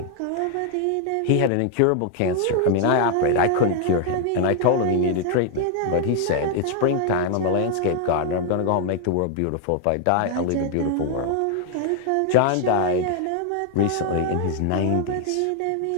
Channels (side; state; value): both; different; correlation 0.00